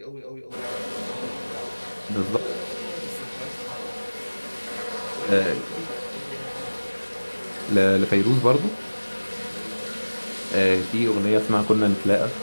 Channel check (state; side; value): inverted; both; correlation -1.00